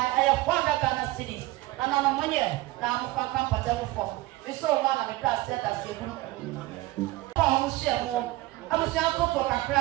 have 4 Ghana cities. And on a money, now I'm for comfortable form. It's so long and it does set us a I was young for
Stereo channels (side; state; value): left; quieter; 18.9 dB